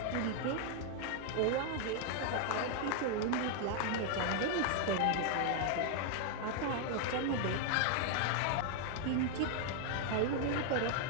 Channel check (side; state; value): both; different; correlation 0.00